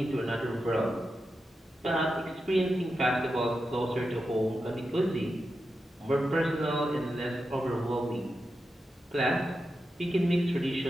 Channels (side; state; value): both; normal; correlation 0.89